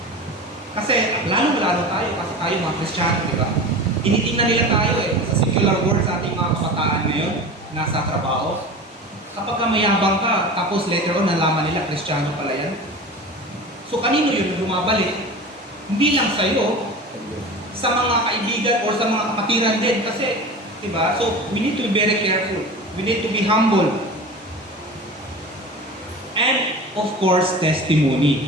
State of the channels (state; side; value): normal; both; correlation 0.33